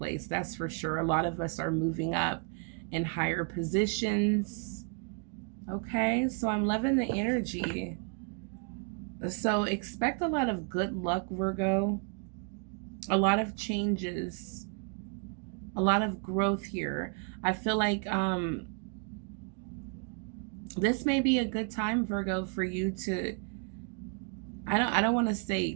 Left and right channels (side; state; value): left; quieter; 38.4 dB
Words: That's for sure. A lot of us are moving up in higher positions. Okay, so I'm loving the energy. So expect a lot of good luck, Virgo. A lot of changes. A lot of growth here. I feel like this may be a good time, Virgo, for you to, I don't want to